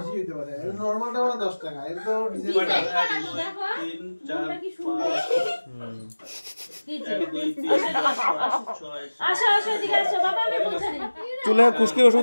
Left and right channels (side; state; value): both; inverted; correlation -1.00